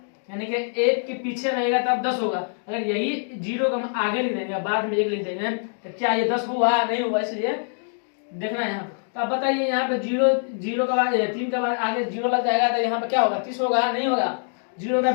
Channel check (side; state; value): right; silent; 62 dB below the other